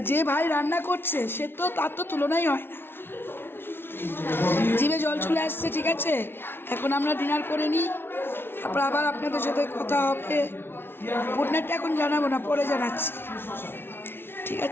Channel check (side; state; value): right; late; 0.11 ms